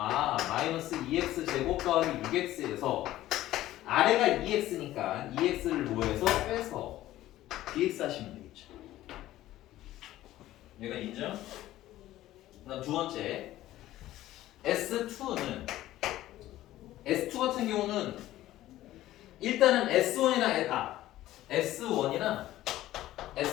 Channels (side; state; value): right; quieter; 14.8 dB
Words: 마이너스 2x 제곱 더하기 6x에서 아래가 2x니까 2x를 뭐해서 빼서 dx 하시면 되겠죠. 얘가 인정? 그다음 두 번째 S2는 S2 같은 경우는 일단은 S1이나